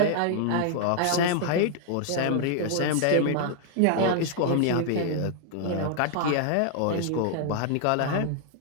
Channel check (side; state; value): both; different; correlation 0.00